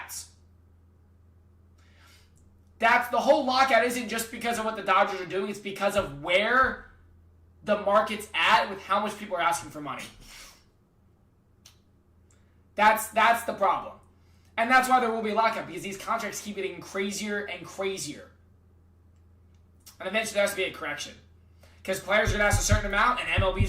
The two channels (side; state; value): both; identical; correlation 1.00